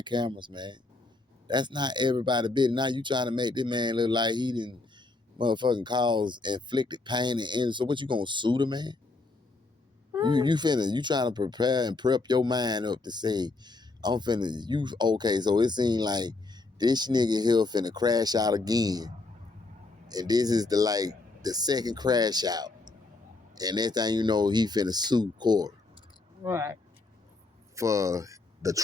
cameras, man. That's not everybody business. Now you trying to make this man look like he didn't motherfucking cause inflicted pain and injury. So what you gonna sue the man? You trying to prepare and prep your mind up to say, I'm finna, you, okay, so it seemed like this nigga here finna crash out again. And this is the second crash out. And next thing you know, he finna sue Cory. Right. For the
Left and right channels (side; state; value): right; quieter; 3.4 dB